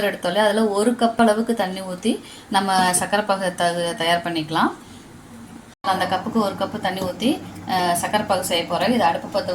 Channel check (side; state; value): both; identical; correlation 1.00